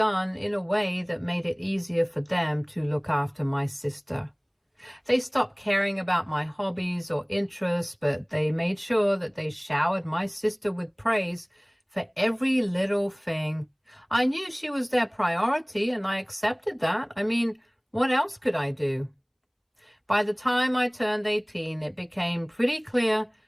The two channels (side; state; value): both; identical; correlation 1.00